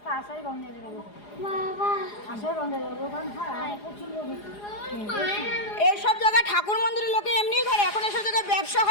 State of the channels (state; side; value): late; right; 4.9 ms